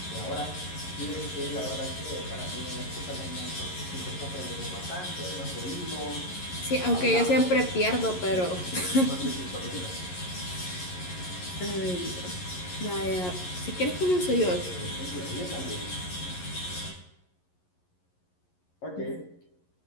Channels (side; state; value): right; late; 11 ms